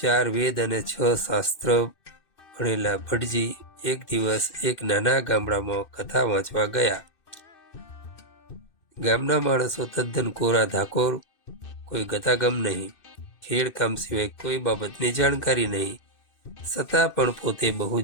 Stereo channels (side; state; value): right; late; 2.6 ms